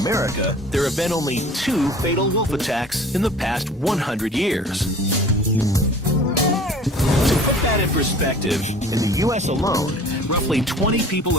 there have been only 2 fatal wolf attacks in the past 100 years. To put that in perspective, in the U.S. alone, roughly 20 people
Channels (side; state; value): both; normal; correlation 0.46